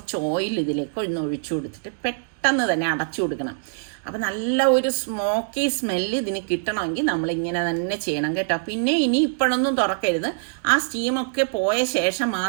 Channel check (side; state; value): left; silent; digital silence